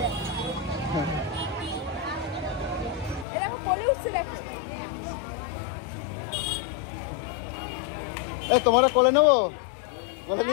এই দেখো কোলে উঠছে দেখো এই তোমার কোলে নেবো? কোলে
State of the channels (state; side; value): drops out; right; at 3.2 s